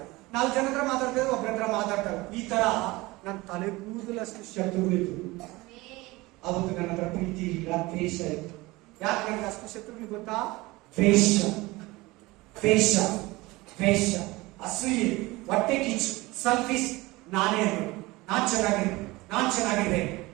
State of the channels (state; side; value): quieter; left; 21.3 dB